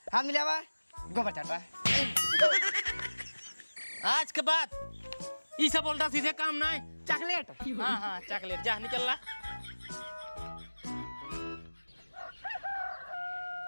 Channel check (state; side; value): inverted; both; correlation -1.00